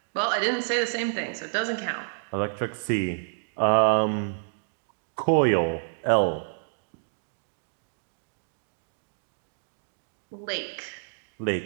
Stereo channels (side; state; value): left; silent; digital silence